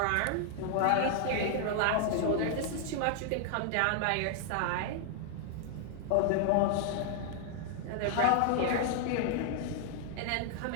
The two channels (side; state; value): both; different; correlation -0.01